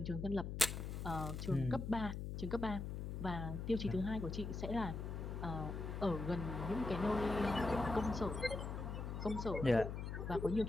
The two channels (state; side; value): noise; left; hum, 5 dB below the sound